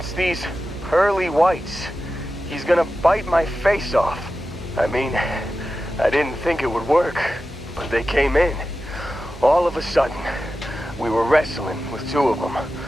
these pearly whites? He's gonna bite my face off." I mean, I didn't think it would work, but they came in. All of a sudden, we were wrestling with two of them.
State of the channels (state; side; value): normal; both; correlation 0.93